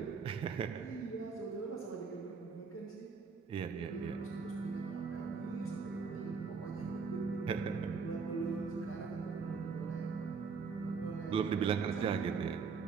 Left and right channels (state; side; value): quieter; left; 5.3 dB